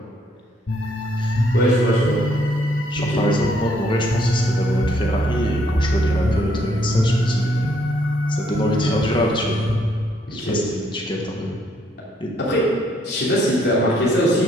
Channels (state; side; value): normal; both; correlation 0.69